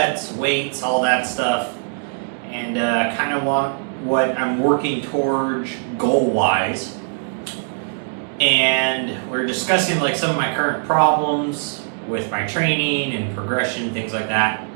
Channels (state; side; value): silent; left; 65 dB below the other